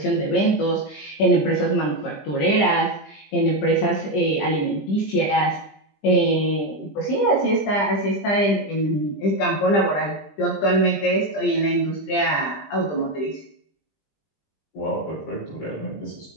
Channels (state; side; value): late; right; 20 ms